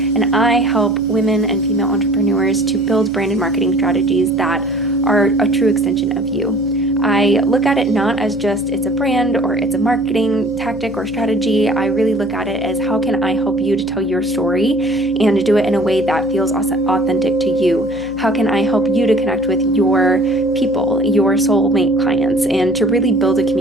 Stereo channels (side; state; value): right; noise; hum, 18 dB below the sound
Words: I help women and female entrepreneurs to build brand and marketing strategies that are a true extension of you. I look at it not as just it's a brand or it's a marketing tactic or strategy. I really look at it as how can I help you to tell your story and to do it in a way that feels authentic to you? How can I help you to connect with your people, your soulmate clients, and to really build a